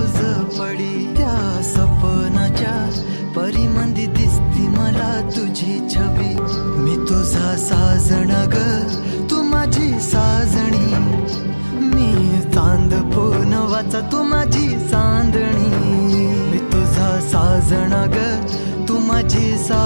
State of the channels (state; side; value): inverted; both; correlation -1.00